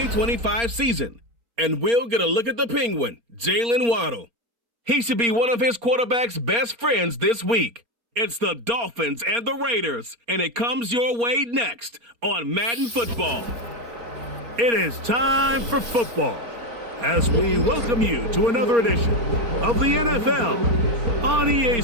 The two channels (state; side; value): late; left; 4.3 ms